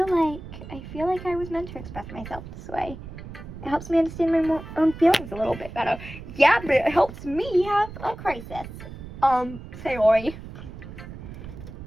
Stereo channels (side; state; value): right; noise; rumble, 12 dB below the sound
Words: like I was meant to express myself this way. It helps me understand my own feelings a little bit better. Yeah, but it helps me have a crisis. Sayori.